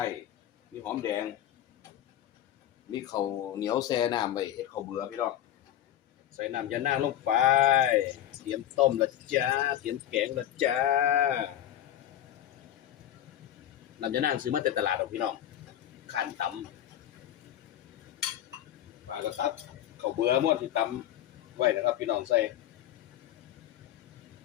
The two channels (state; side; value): quieter; right; 11.7 dB